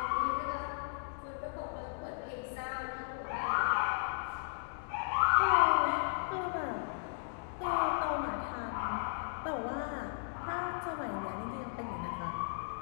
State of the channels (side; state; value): right; silent; digital silence